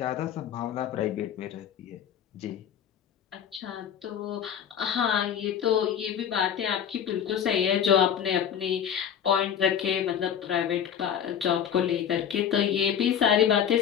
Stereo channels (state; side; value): quieter; right; 8.8 dB